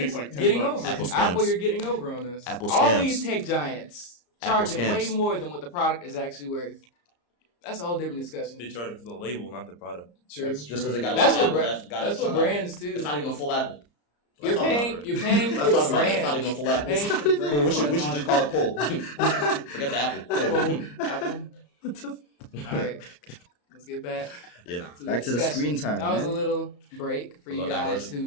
like $10. getting over. Apple us. scams. Apple, you're getting over on us. Apple All scams. these tech giants Apple charging way scams. more than what the product is actually worth. That's a whole different They discussion. charge for the label, not the product. True. Just because they got That's Apple, what that's got that's a what ton of- brands too. It's not even a full Apple. You're Let's talk about paying. it. You're paying Let's for talk about it. It's not brand. even a full Apple. Paying for brand. We should just call it pull. Forget the Apple. Pull. Apple. All right, let's get back. Yeah, nah. Back to the discussion. screen time, That was a man. little break for A you little guys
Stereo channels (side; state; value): right; late; 34 ms